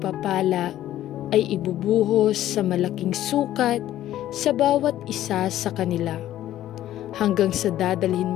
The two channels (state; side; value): quieter; right; 13.1 dB